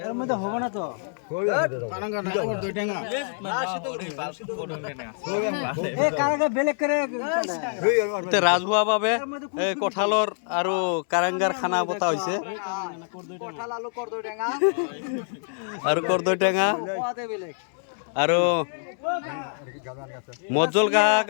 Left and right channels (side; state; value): right; silent; 61 dB below the other